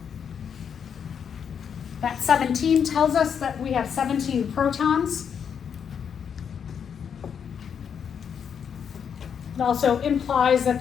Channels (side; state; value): right; quieter; 7.5 dB